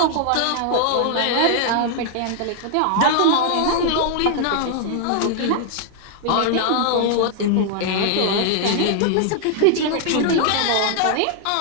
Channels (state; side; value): different; both; correlation 0.00